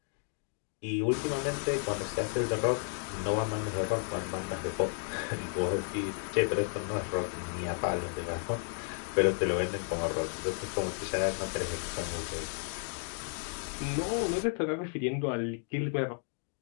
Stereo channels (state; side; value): silent; right; 56 dB below the other